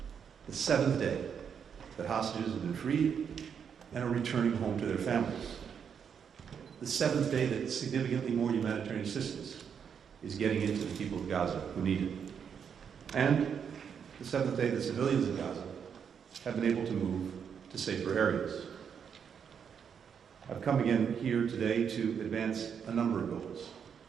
The seventh day that hostages have been freed and are returning home to their families. The seventh day that significantly more humanitarian assistance is getting into the people of Gaza who need it. And the seventh day that civilians in Gaza have been able to move to safer areas. I've come again here today to advance a number of goals.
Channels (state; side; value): quieter; left; 7.3 dB